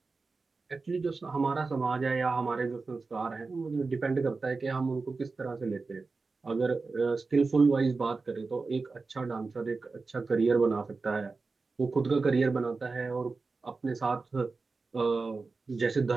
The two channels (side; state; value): left; quieter; 4.1 dB